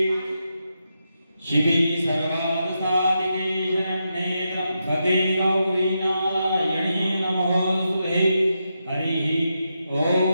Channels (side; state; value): both; inverted; correlation -0.85